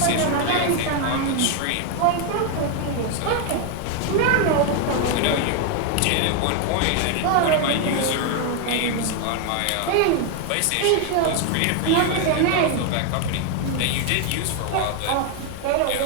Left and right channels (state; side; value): different; both; correlation 0.01